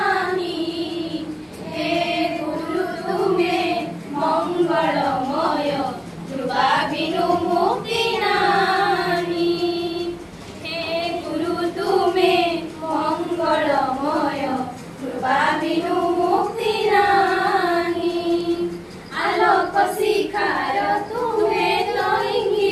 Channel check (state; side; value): identical; both; correlation 1.00